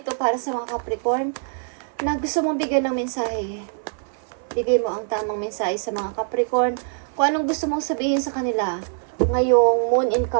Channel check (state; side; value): silent; left; 56 dB below the other